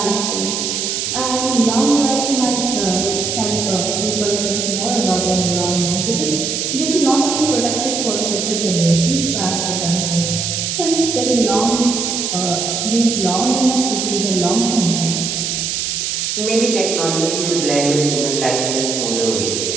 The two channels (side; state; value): right; noise; hiss, 1 dB below the sound